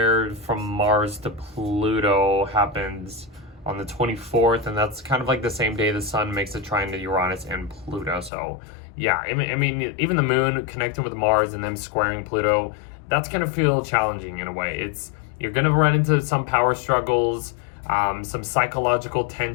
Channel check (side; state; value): right; drops out; at 8.3 s